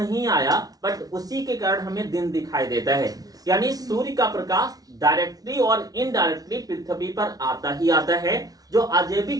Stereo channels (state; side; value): late; left; 0.18 ms